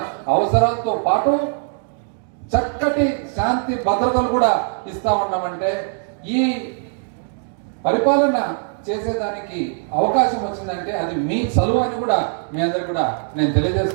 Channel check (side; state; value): left; silent; 57 dB below the other